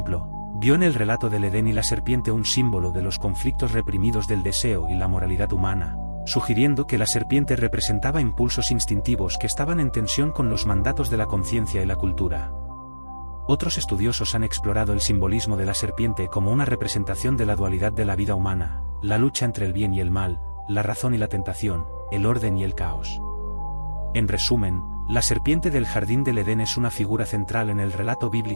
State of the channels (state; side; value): inverted; both; correlation -1.00